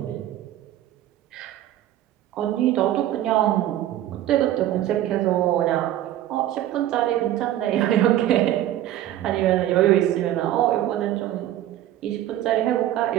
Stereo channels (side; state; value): left; quieter; 13.0 dB